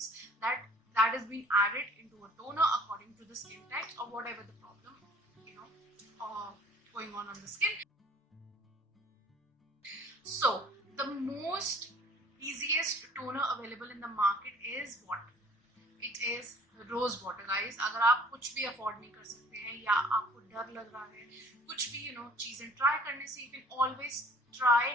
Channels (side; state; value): both; normal; correlation 0.53